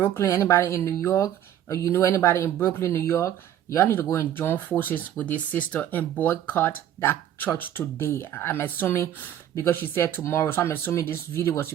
anybody in New York, or you know anybody in Brooklyn, New York, y'all need to go and join forces with this sister and boycott that church today. I'm assuming, because she said tomorrow, so I'm assuming this video was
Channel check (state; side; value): quieter; left; 11.0 dB